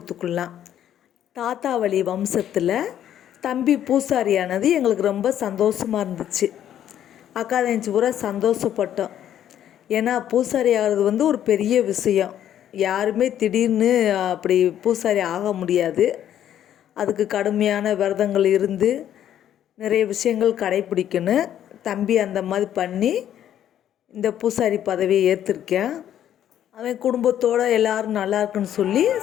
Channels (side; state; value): right; quieter; 10.7 dB